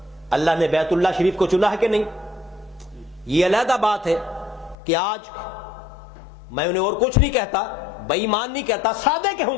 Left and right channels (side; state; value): right; drops out; at 4.8 s